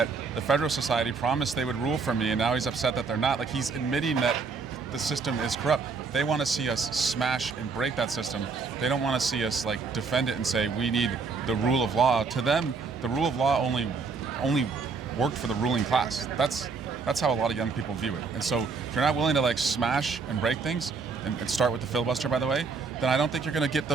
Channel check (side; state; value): left; quieter; 4.8 dB